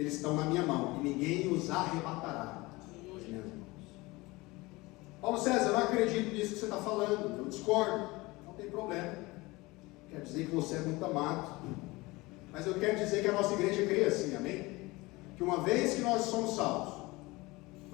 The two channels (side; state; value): right; quieter; 22.2 dB